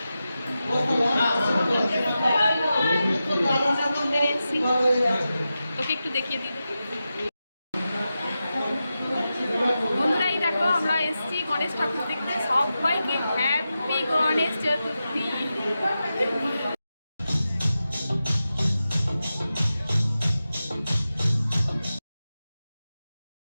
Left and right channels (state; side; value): inverted; both; correlation -0.92